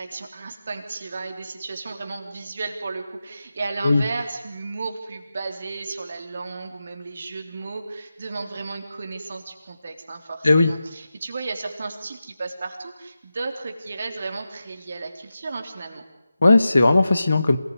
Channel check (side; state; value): both; inverted; correlation -0.92